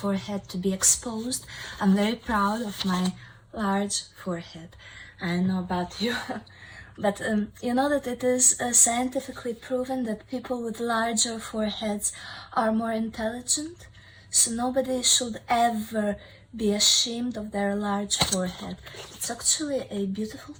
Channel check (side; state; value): both; identical; correlation 1.00